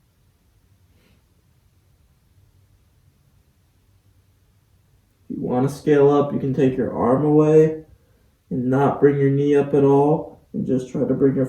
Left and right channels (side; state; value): both; identical; correlation 1.00